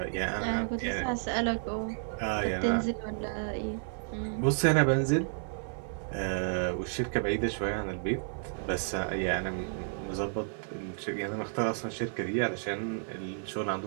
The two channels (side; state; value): left; silent; 57 dB below the other